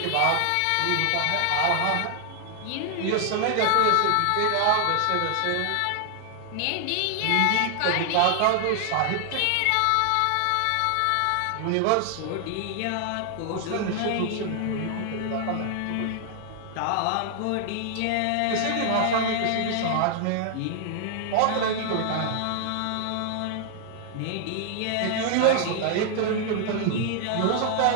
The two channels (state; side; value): different; both; correlation 0.00